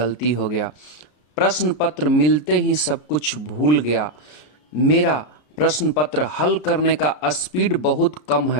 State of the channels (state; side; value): late; right; 33 ms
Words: हो गया, प्रश्न पत्र मिलते ही सब कुछ भूल गया, मेरा प्रश्न पत्र हल करने का स्पीड बहुत कम